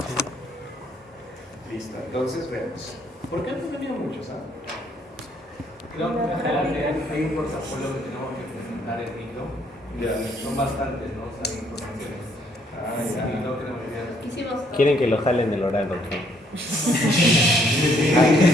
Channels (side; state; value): both; normal; correlation 0.68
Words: Listo. Entonces vemos. ¿Por qué han venido muchos? Creo que en general hay un portafolio que tenemos que presentar en micro. Ya. Son bastantes, ¿no? O sea, informaciones. Ya. Y no queremos olvidar. Quieren que lo jalen del oral, doctor.